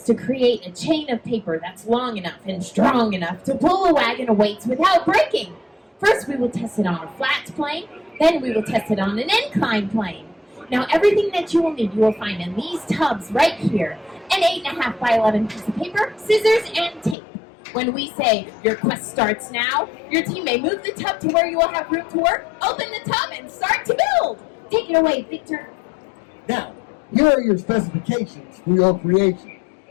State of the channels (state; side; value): drops out; right; at 17.2 s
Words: to create a chain of paper that's long enough and strong enough to pull a wagon of weights without breaking. First, we will test it on a flat plane. Then we will test it on an inclined plane. Now, everything that you will need, you will find in these tubs right here. An 8.5 by 11 piece of paper, scissors, and tape. When we say, your quest starts now, your team may move the tub to where you will have room to work, open the tub, and start to build. Take it away, Victor. Now, here are your specifications for your creation.